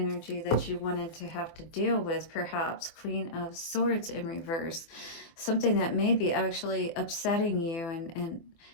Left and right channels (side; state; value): right; late; 24 ms